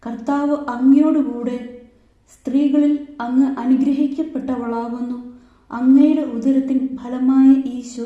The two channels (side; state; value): both; identical; correlation 1.00